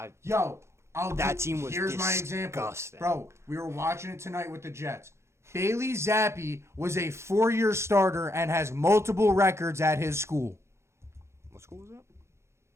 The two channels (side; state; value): left; late; 0.13 ms